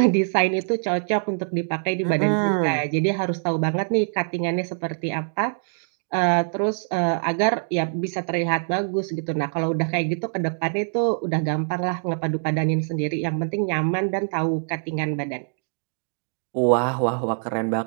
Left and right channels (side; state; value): left; silent; digital silence